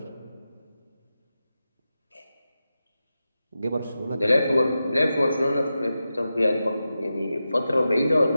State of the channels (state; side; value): inverted; both; correlation -0.91